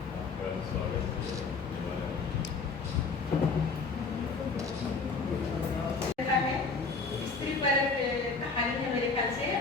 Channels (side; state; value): right; quieter; 4.5 dB